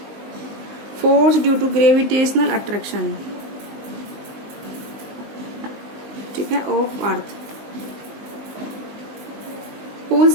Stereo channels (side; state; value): left; late; 19 ms